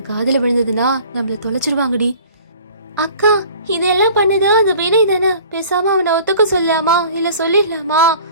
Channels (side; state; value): both; inverted; correlation -0.47